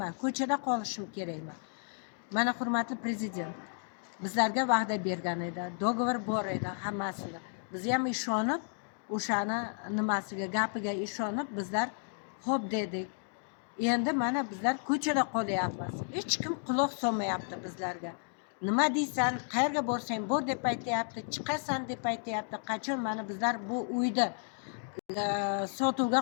ko'chada qolishim kerakmi? Mana hurmatli prezident, bizlarga va'da bergan edi, dogovor bor edi hammasini. Biz ham ishonib, o'shani nimasiga, gapiga ishonib bizlar xo'p dedik. Endi mana bizlar ko'chada qolyapmiz. Hech kim quloq solmayapti bizlarga. Nima deysan, qayerga borsang bor deb aytayapti, chiqasan deb aytayapti. Qachon mana bizlar bu uyda sotuvga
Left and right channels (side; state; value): right; silent; 56 dB below the other